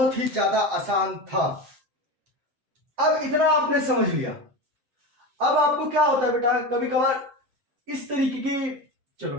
ही ज्यादा आसान था। अब इतना आपने समझ लिया। अब आपको क्या होता है बेटा, कभी कभार इस तरीके की, चलो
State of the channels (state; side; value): late; left; 7.7 ms